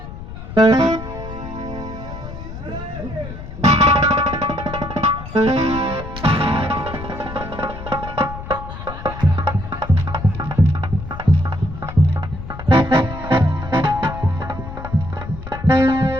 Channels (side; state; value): left; noise; rumble, 10 dB below the sound